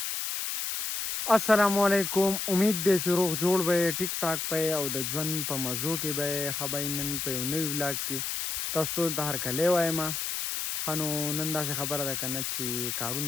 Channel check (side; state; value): left; noise; hiss, 2 dB below the sound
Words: السلام علیکم، امید دی چې روغ جوړ به یې، ټیک ټاک به یې او د ژوند په مزو کې به یې. ښه به یې نن په یو نوي ولاګ کې تاسو ټول ته هرکلی وایم. ښه نو نن داسې خبره ده که نه چې